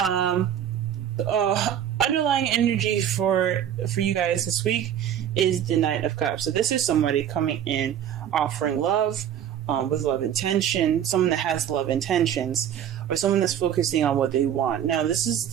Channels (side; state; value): left; quieter; 9.9 dB